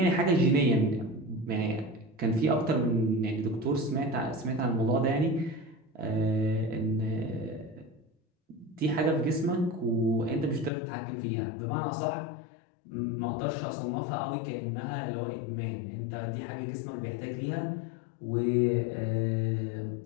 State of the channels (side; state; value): right; drops out; at 10.7 s